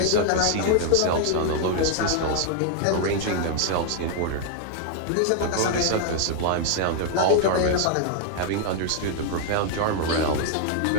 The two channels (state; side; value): different; both; correlation 0.00